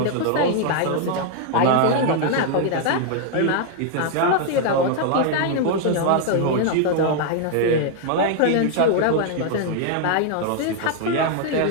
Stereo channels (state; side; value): different; both; correlation 0.00